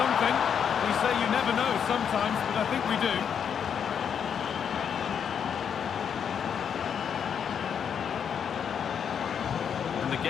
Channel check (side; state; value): right; quieter; 7.7 dB